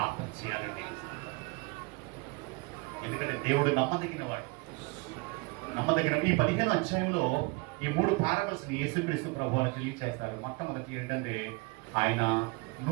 చేయాలండి. ఎందుకంటే దేవుడు నమ్మదగిన వాడు. ఈ 15వ అధ్యాయంలో ఈ 3 పారబుల్స్ ని యేసుక్రీస్తు ప్రభువు తెలియజేస్తారు. మొట్టమొదటి ఏంటంటే ఆయన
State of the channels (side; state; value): left; quieter; 27.4 dB